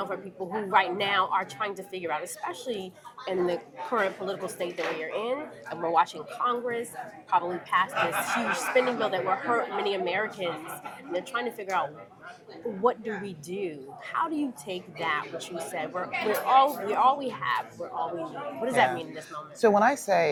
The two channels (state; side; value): identical; both; correlation 1.00